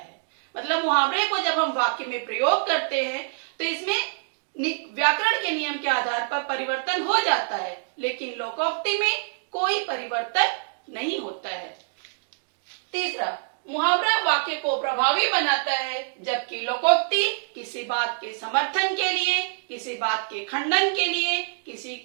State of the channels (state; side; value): silent; left; digital silence